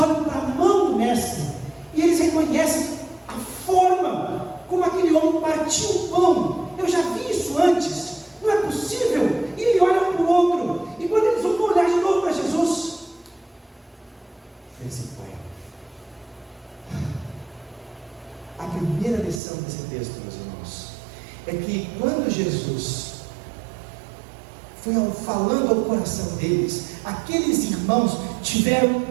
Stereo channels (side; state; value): left; drops out; at 19.4 s